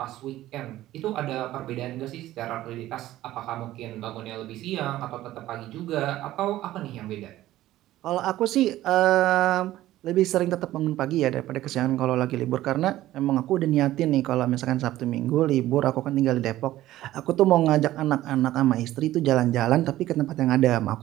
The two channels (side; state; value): left; quieter; 14.9 dB